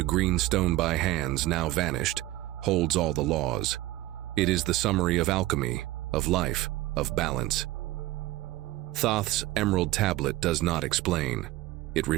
green stone by hands, now vanished, holds all the laws. It is the summary of alchemy, of life, of balance. Thoth's emerald tablet does not explain. It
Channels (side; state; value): left; quieter; 16.8 dB